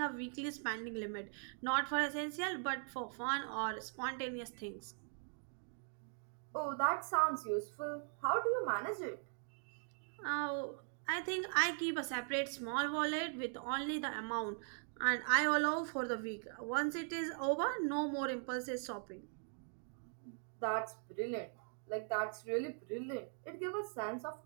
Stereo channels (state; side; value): silent; left; 51 dB below the other